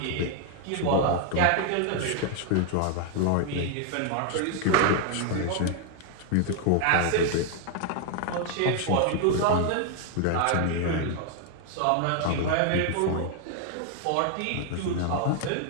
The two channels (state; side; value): different; both; correlation 0.00